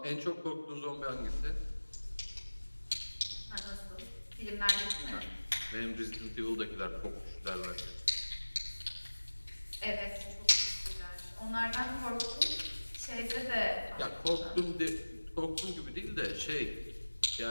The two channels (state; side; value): inverted; both; correlation -1.00